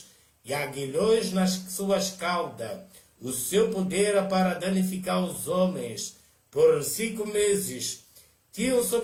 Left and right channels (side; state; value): both; identical; correlation 1.00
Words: e aguilhões nas suas caudas. O seu poder era para danificar os homens. Por 5 meses tinham